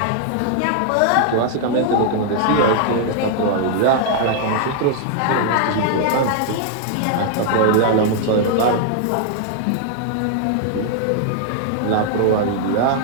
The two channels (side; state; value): both; different; correlation 0.00